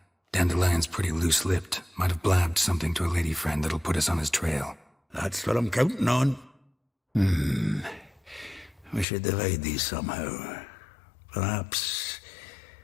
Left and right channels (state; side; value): drops out; right; at 9.1 s